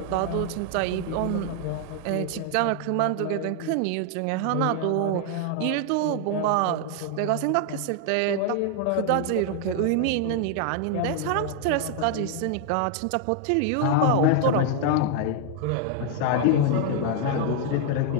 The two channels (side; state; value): both; different; correlation 0.00